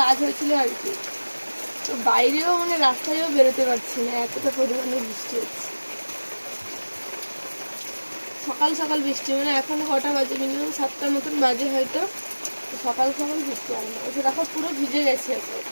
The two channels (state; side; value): inverted; both; correlation -1.00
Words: কাজ হয়েছিল আর কি। তো বাইরেও মানে রাস্তায়ও বেরোতে পারছি না, এতটা পরিমাণে বৃষ্টি হচ্ছে। সকাল সকাল বৃষ্টি, মানে এখন কটা বাজে, মিনিমাম 7টার মতন বাজে হয়তো। সকাল সকাল বৃষ্টি আর না, ওই দেখো পুরো ভিজে গেছে এখন।